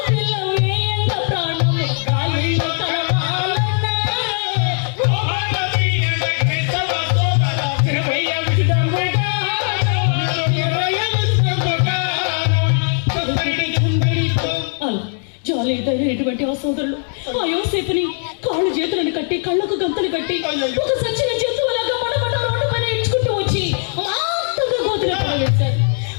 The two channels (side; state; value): right; silent; 59 dB below the other